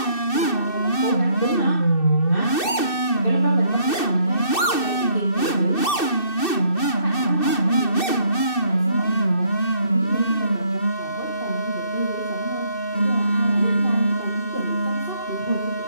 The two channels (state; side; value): late; right; 2.6 ms